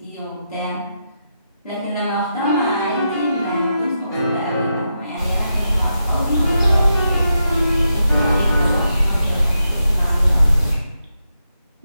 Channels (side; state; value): both; inverted; correlation -0.85